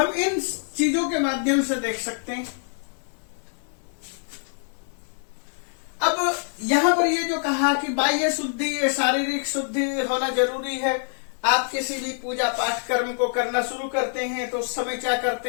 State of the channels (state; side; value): silent; right; 62 dB below the other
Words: इन चीजों के माध्यम से देख सकते हैं। अब यहां पर ये जो कहा कि बाह्य शुद्धि, शारीरिक शुद्धि होना जरूरी है। आप किसी भी पूजा पाठ कर्म को करना शुरू करते हैं तो उस समय क्या करते